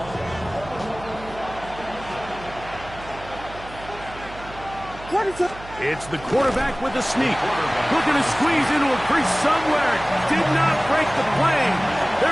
It's the quarterback with the sneak. Looking to squeeze into a crease somewhere. Did not break the plane.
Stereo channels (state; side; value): noise; right; hum, 16 dB below the sound